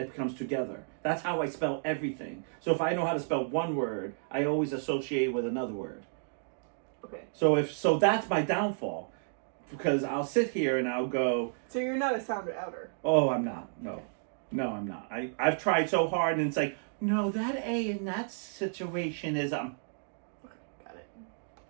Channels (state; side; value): silent; left; digital silence